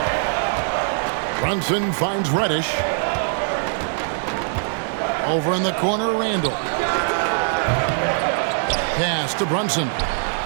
Brunson finds Reddish. Over in the corner, Randall. Pass to Brunson.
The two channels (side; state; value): left; silent; 64 dB below the other